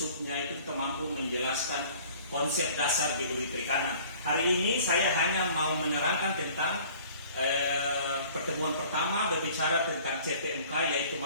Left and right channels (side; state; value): both; inverted; correlation -0.51